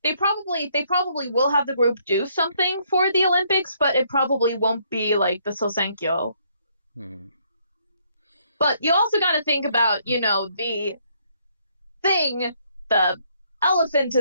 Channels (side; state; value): both; inverted; correlation -0.69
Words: They probably will have the group do something for the Olympics, but it probably won't be like the Sousenkyo. But you also got to think about, you know, the elephant